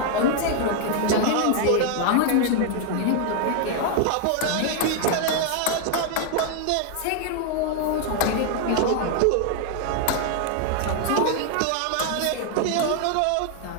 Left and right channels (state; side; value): different; both; correlation 0.00